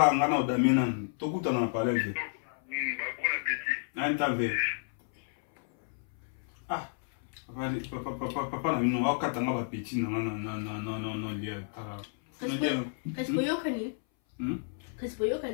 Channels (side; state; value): right; silent; 57 dB below the other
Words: ngana odamina tokuta na parler ve anta ve papa na bino o katanga ba petit no lia kasi boyokani